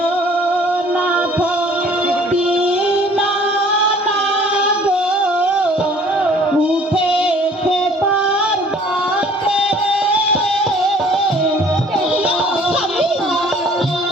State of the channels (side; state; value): both; normal; correlation 0.54